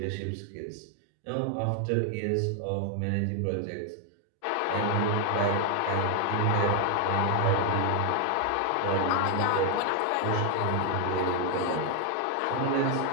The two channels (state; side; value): different; both; correlation 0.00